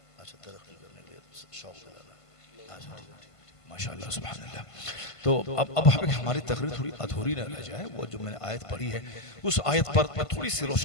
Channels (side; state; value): right; late; 1.5 ms